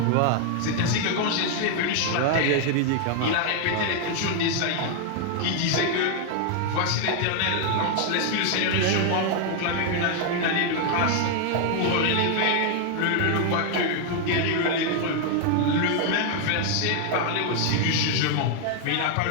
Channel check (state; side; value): different; both; correlation 0.00